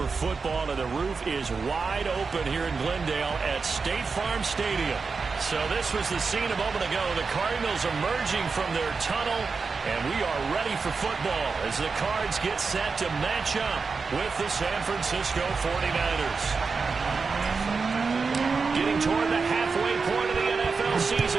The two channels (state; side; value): quieter; left; 4.8 dB